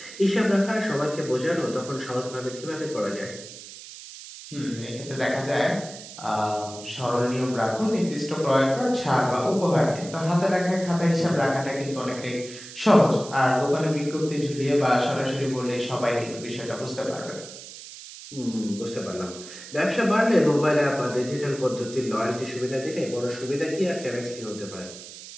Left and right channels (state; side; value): noise; right; hiss, 14 dB below the sound